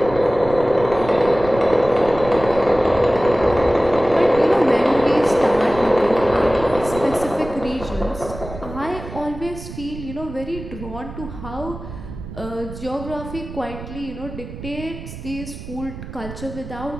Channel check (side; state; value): right; noise; rumble, 12 dB below the sound